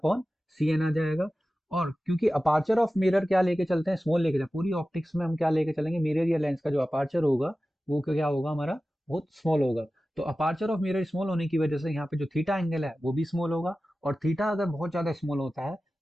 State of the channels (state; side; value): normal; both; correlation 0.95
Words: C N आ जाएगा। और क्योंकि अपार्चर ऑफ मिरर क्या लेके चलते हैं? स्मॉल लेके चलते, पूरी ऑप्टिक्स में हम क्या लेके चलेंगे? मिरर या लेंस का जो अपार्चर होगा वो क्या होगा? हमारा बहुत स्मॉल होगा। तो अपार्चर ऑफ मिरर स्मॉल होने की वजह से यहाँ पे जो थीटा एंगल है वो भी स्मॉल होगा। और थीटा अगर बहुत ज्यादा स्मॉल होता है